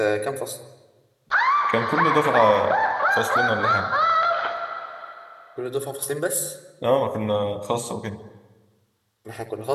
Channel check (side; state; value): both; identical; correlation 1.00